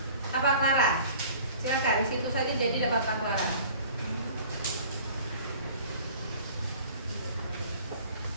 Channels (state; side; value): inverted; both; correlation -0.48